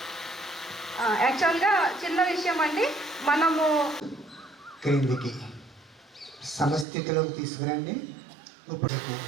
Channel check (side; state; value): left; drops out; at 6.9 s